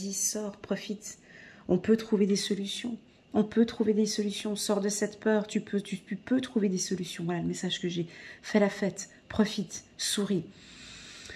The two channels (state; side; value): identical; both; correlation 1.00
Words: sors, profite. On peut trouver des solutions. On peut trouver des solutions. Sors de cette peur, tu peux trouver des solutions. Voilà le message que j'ai. Fais la fête, profite, souris.